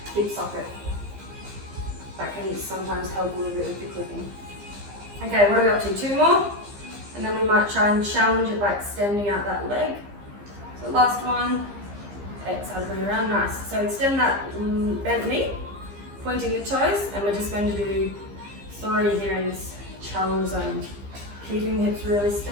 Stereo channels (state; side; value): late; left; 15 ms